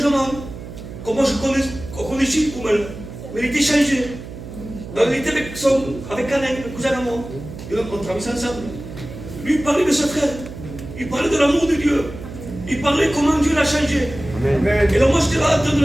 Comment je connaissais Koumel. Mais il était changé. Donc, il était avec Alain, le cousin à moi. Et donc, on travaillait ensemble. Lui, il parlait de ce frère. Il parlait de l'amour de Dieu. Il parlait comment Dieu l'a changé. Amen. Et là, moi, j'étais là en train de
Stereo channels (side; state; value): right; noise; hum, 12 dB below the sound